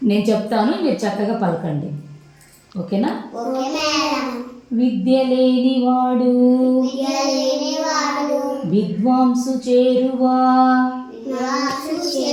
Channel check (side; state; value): both; identical; correlation 1.00